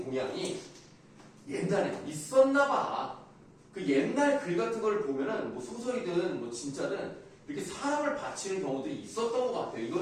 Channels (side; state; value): both; identical; correlation 1.00